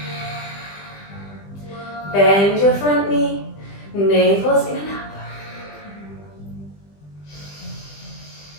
Bend your front knee. Navel's in and up.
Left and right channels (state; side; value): late; right; 20 ms